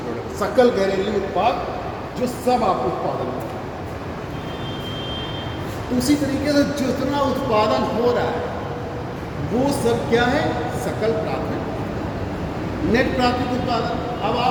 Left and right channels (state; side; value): identical; both; correlation 1.00